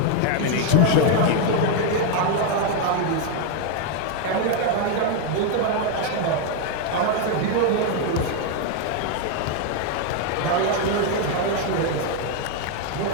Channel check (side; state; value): both; different; correlation 0.01